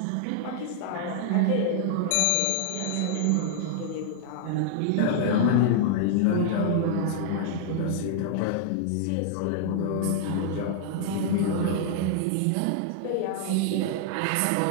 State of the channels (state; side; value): different; both; correlation -0.01